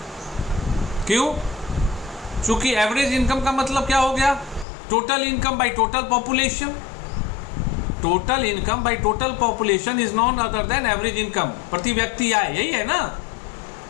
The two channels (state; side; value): drops out; right; at 4.7 s